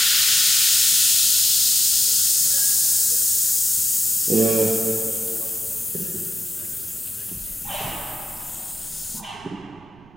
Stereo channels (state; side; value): noise; right; rumble, 26 dB below the sound